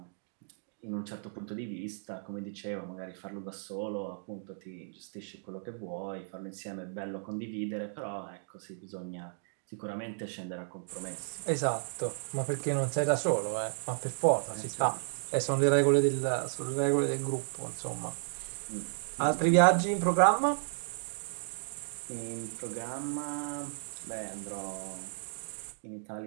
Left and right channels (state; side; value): silent; left; digital silence